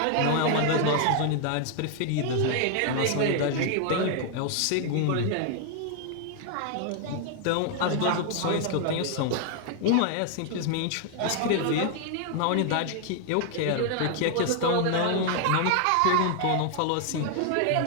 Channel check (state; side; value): different; both; correlation 0.00